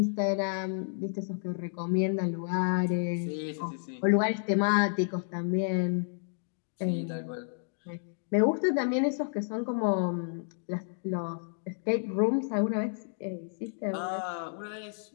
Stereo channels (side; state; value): right; silent; digital silence